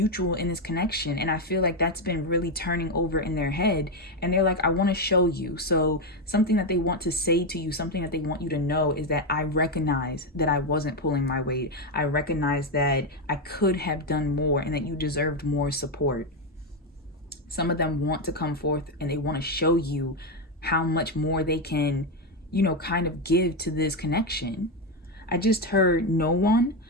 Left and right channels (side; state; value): both; normal; correlation 0.08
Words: in this connection. And I feel like that's been really turning over in their head. And they're like, I want to show you. So something that they want to say to you, something that they want you to know is that I recognize that I wasn't pulling my weight. I recognize that I could have done more and that you deserved more support. Some of them want to come forth and they want to show you how much more they can, you know, kind of give to this connection. I just heard no one,